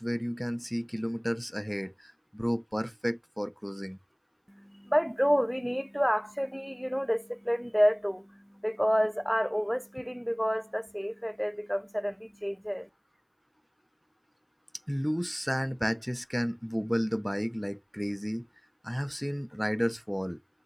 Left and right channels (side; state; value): both; identical; correlation 1.00